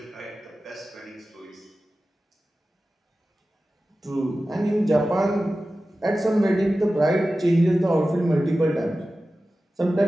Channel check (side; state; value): both; normal; correlation 0.95